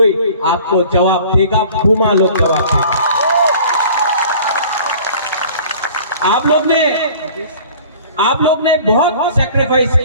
आपको जवाब देगा, बुमा लोग जवाब देगा। आप लोग ने बहुत सैक्रिफाइस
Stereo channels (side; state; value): both; inverted; correlation -0.47